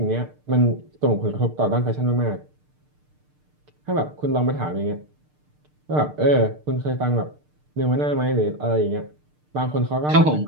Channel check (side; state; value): left; late; 6.6 ms